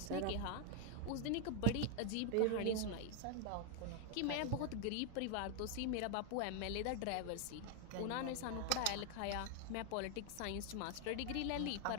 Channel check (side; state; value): both; different; correlation 0.01